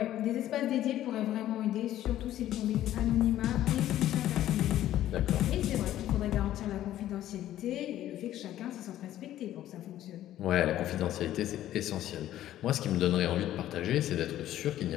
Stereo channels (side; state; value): right; quieter; 13.0 dB